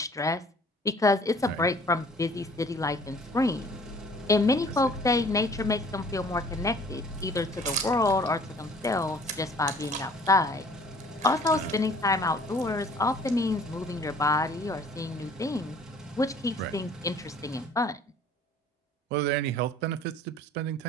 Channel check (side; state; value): both; normal; correlation 0.53